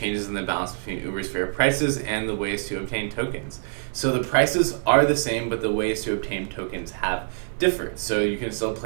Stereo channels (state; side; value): silent; left; digital silence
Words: in the balance between Ubersphere prices and the ways to obtain tokens? So the prices are the same, but the ways to obtain tokens have differed. So you can still